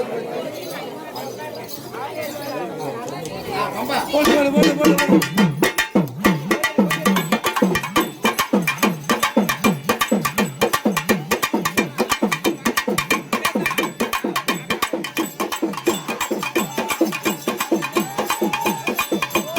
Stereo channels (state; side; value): identical; both; correlation 1.00